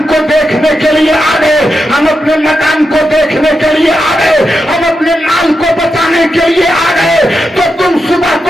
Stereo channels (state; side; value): normal; both; correlation 0.87